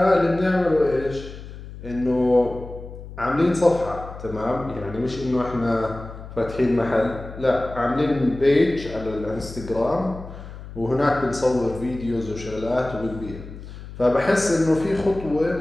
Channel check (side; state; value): left; noise; hum, 13 dB below the sound